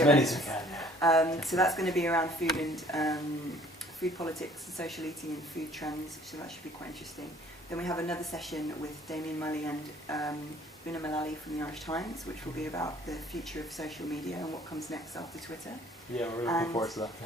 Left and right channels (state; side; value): normal; both; correlation 0.56